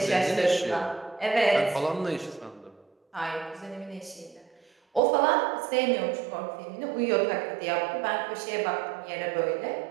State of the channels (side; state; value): left; drops out; at 5.0 s